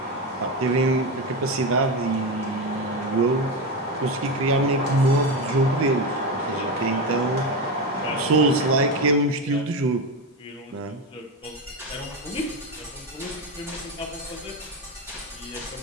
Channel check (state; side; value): normal; both; correlation 0.16